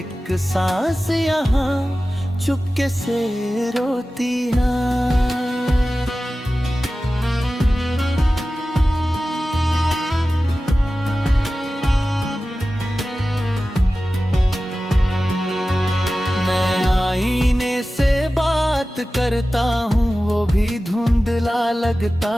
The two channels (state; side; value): normal; both; correlation 0.95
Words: सांस यहाँ चुपके से रोती है। आईने से बात करता हूँ वो भी धुंधला लगता